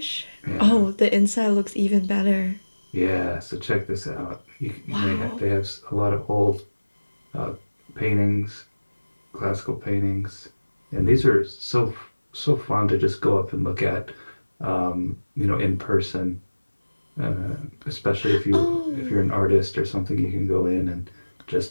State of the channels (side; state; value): both; inverted; correlation -1.00